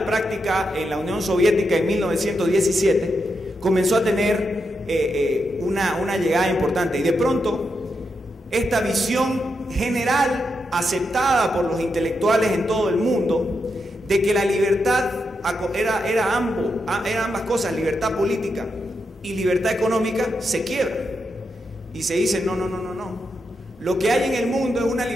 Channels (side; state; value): both; normal; correlation 0.84